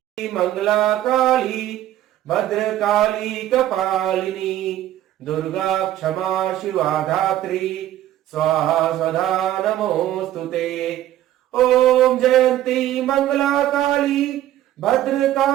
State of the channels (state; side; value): quieter; left; 13.1 dB